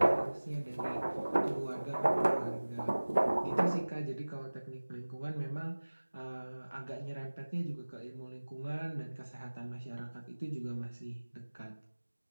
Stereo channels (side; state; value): both; inverted; correlation -1.00